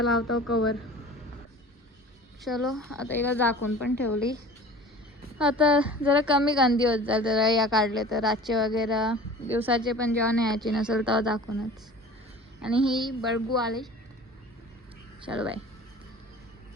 लावतो कवर. चलो आता हिला झाकून पण ठेवली. आता जरा कमी गंदी होत जाईल जरा या काढले तर, रातचे वगैरे दिवसाचे पण जेव्हा न्यायची नसेल तेव्हा दाखवूनच. आणि ही बळगू आली. चलो बाय.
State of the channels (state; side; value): normal; both; correlation 0.41